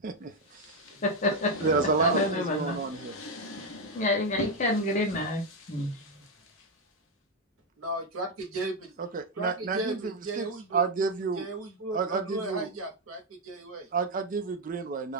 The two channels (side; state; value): both; normal; correlation 0.05